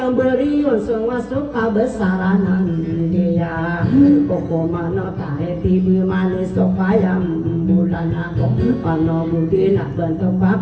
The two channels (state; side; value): identical; both; correlation 1.00